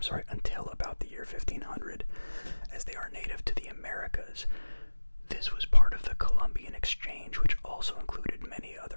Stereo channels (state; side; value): inverted; both; correlation -1.00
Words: Until about the year 1500, as they are native to the Americas. This was part of the Columbian Exchange, which also included many